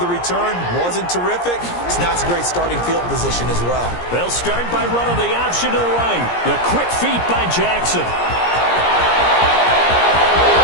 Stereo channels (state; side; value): late; right; 17 ms